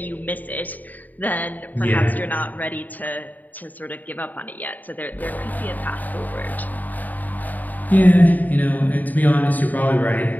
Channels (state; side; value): late; right; 0.083 ms